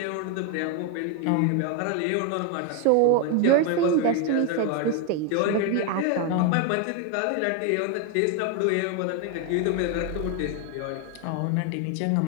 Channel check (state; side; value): different; both; correlation 0.01